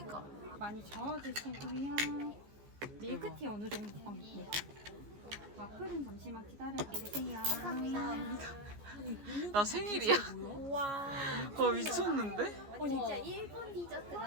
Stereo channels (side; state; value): left; late; 14 ms